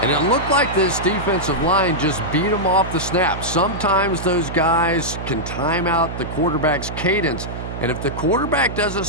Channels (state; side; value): noise; right; hum, 8 dB below the sound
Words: it looked like this defensive line just beat him off the snap. Sometimes those guys can time out the quarterback's cadence. And if the quarterback doesn't